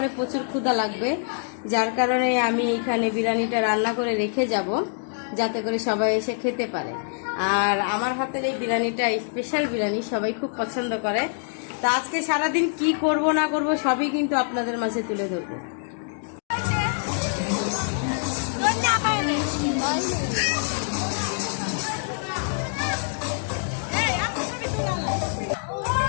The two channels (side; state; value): right; silent; digital silence